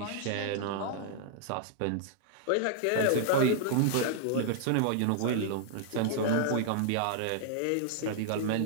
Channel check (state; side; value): different; both; correlation -0.01